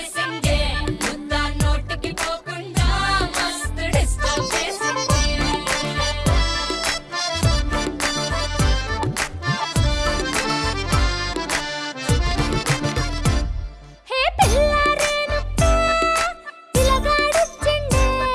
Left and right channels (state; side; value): identical; both; correlation 1.00